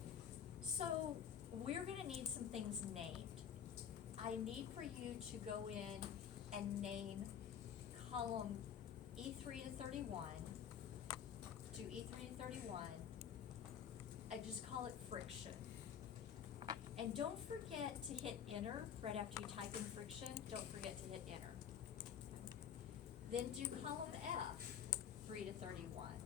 So we're gonna need some things named. I need for you to go in and name column E3 to 31, do E3 to 31, and just call it friction. And don't forget to hit enter right after you type in friction, don't forget to hit enter. Then do column F, 3 to 31.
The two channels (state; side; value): quieter; right; 8.5 dB